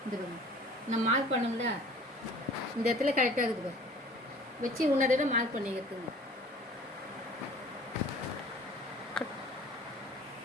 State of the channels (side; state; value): both; normal; correlation 0.48